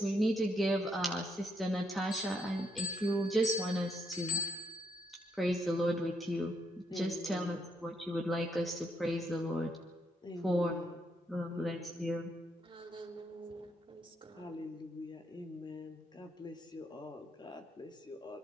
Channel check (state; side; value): normal; both; correlation 0.76